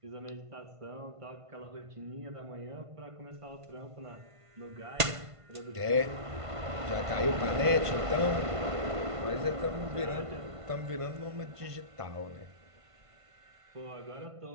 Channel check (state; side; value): late; left; 1.5 ms